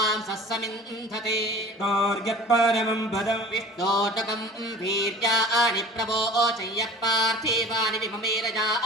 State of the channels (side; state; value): both; normal; correlation 0.43